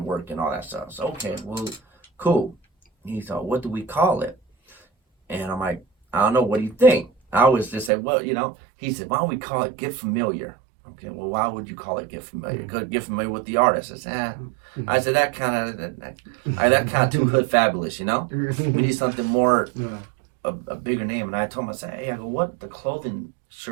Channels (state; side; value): drops out; left; at 7.9 s